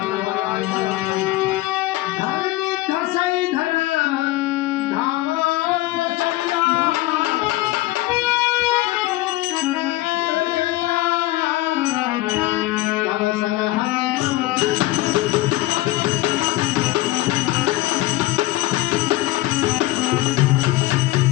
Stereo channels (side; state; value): right; quieter; 17.8 dB